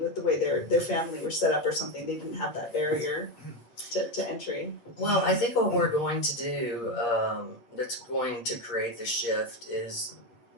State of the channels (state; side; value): late; right; 8.5 ms